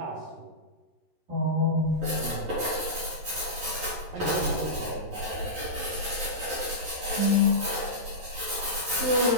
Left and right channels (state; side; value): late; left; 13 ms